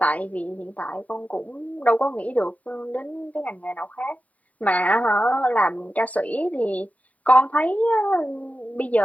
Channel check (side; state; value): right; late; 0.070 ms